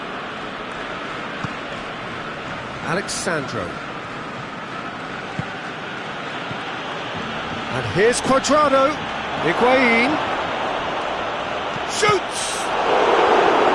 Alexandro. And here's Cuadrado. Higuain. Shoots!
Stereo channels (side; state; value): both; identical; correlation 1.00